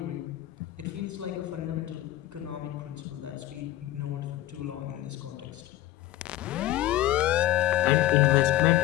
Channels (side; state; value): right; quieter; 15.1 dB